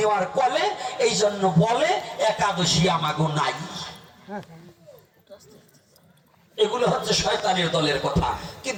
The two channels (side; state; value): both; identical; correlation 1.00